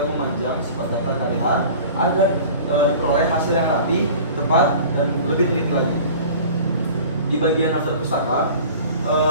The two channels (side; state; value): both; inverted; correlation -0.42